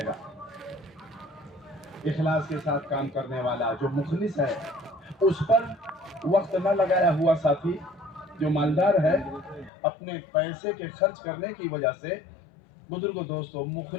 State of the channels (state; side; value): drops out; right; at 9.7 s